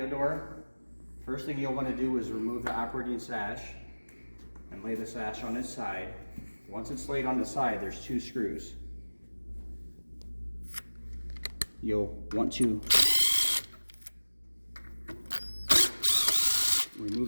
door. First thing you'll want to do is remove the operating sash and lay the sash on its side. Once it's laid on the side, there's 2 screws. You'll want to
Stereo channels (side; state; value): both; inverted; correlation -1.00